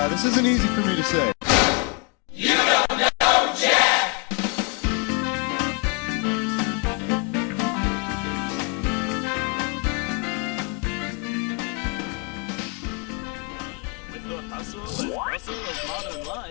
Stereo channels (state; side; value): quieter; right; 27.7 dB